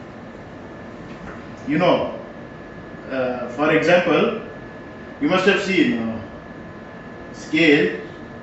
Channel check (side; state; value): both; identical; correlation 1.00